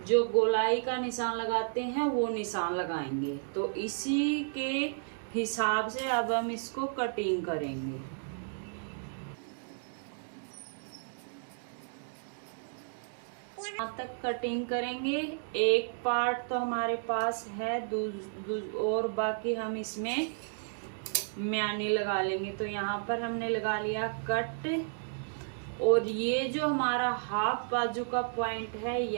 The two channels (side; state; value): left; silent; digital silence